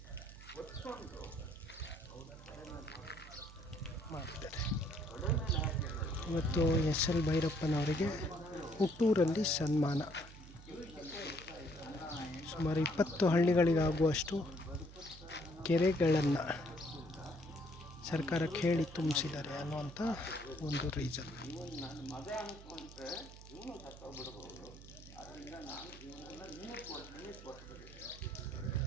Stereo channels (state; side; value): noise; right; hum, 17 dB below the sound